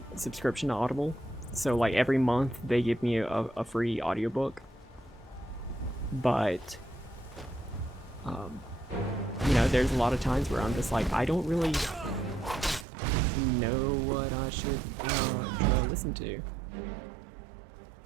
subscription to Audible, so like every month they give me a free audiobook, but you know, there's a lot of times where I'm just like, I don't really know what I should try to listen to.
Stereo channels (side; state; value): left; drops out; at 12.9 s